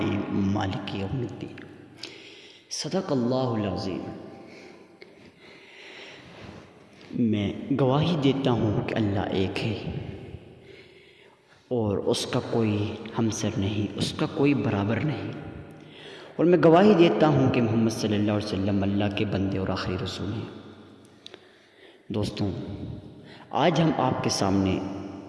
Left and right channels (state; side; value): identical; both; correlation 1.00